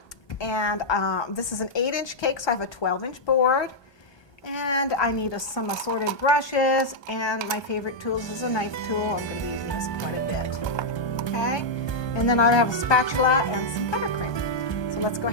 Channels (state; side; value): late; right; 1.2 ms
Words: And this is an 8-inch cake, so I have a 12-inch board. And I need some assorted brushes, and my favorite tools is a knife tool. I'm going to be using this quite a bit. Okay? And then I have a spatula and some buttercream. So let's go